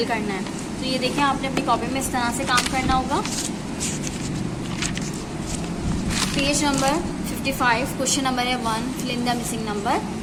करना है। तो ये देखें, आपने अपनी कॉपी में इस तरह से काम करना होगा। पेज नंबर 55 क्वेश्चन नंबर है 1, fill in the missing number.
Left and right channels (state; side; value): identical; both; correlation 1.00